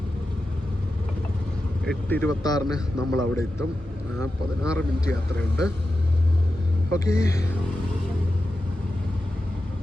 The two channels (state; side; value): normal; both; correlation 0.91